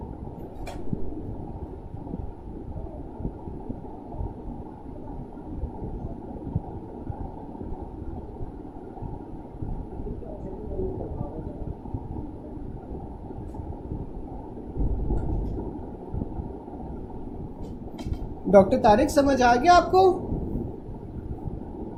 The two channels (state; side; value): identical; both; correlation 1.00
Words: डॉक्टर तारिक समझ आ गया आपको?